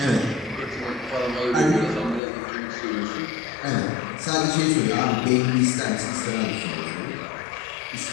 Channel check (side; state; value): right; drops out; at 2.2 s